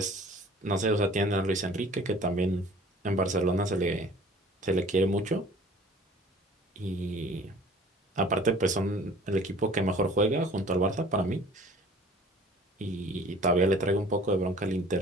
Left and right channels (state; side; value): normal; both; correlation 0.49